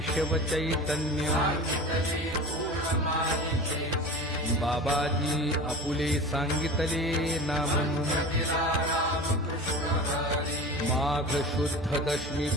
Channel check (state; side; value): normal; both; correlation 0.34